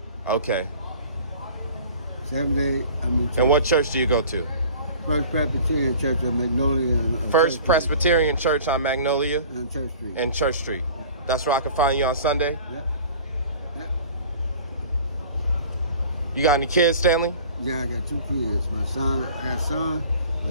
Okay. 7 days, I'm in church. And what church do you go to? First Presbyterian Church on Magnolia. First Presbyterian Church on Magnolia? On Church Street. And Church Street. Yeah. That's where I can find you on Sunday? Yep. You got any kids, Stanley? Yeah, I got 2 kids. My son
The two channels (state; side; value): inverted; both; correlation -0.45